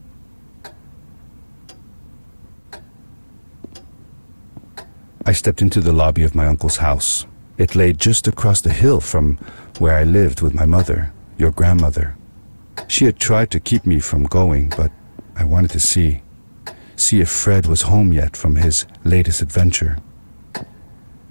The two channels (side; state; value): both; inverted; correlation -1.00